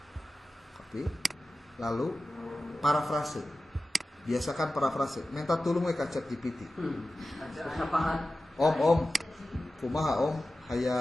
Copy. Lalu parafrase. Biasakan parafrase. Minta tulung we ka ChatGPT. Om, kumaha Om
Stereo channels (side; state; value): both; normal; correlation 0.95